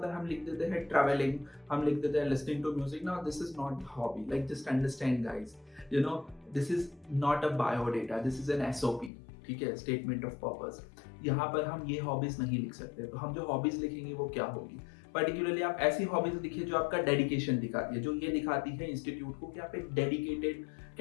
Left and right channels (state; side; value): drops out; right; at 9.1 s